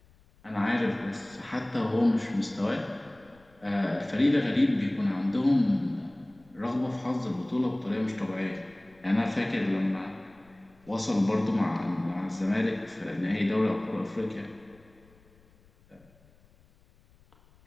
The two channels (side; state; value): left; noise; rumble, 30 dB below the sound